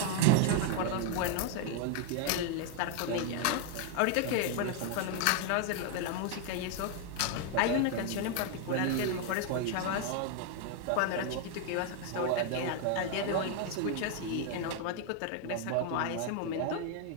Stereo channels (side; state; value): both; different; correlation 0.00